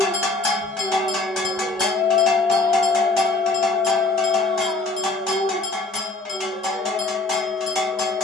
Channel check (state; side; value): quieter; right; 3.2 dB